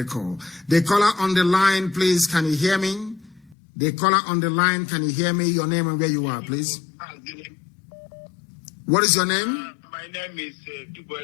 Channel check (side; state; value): right; drops out; at 3.6 s